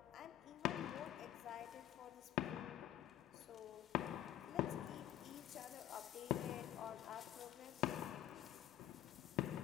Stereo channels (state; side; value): quieter; right; 12.4 dB